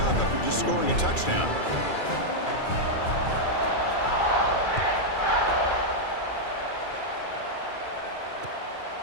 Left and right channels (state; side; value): late; right; 2.3 ms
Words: after just scoring a touchdown.